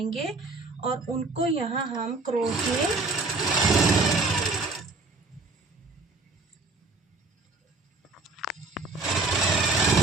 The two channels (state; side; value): quieter; left; 3.7 dB